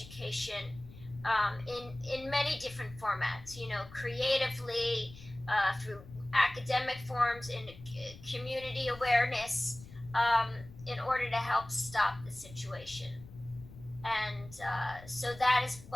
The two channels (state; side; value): noise; left; rumble, 18 dB below the sound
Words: in many different formats, creatively, through academic forms, in community awareness, in order to help stop the situation. And so that is